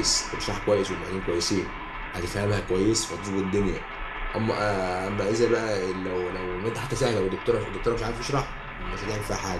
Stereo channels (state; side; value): identical; both; correlation 1.00